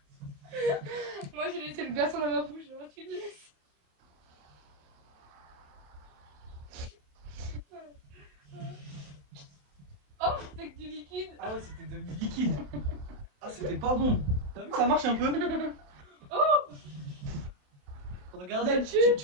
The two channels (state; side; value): late; left; 27 ms